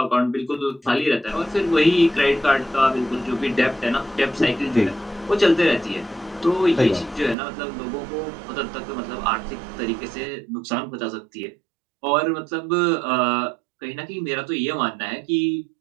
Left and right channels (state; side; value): drops out; left; at 7.4 s